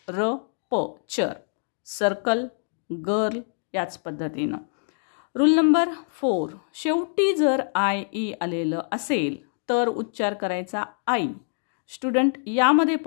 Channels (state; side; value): silent; right; digital silence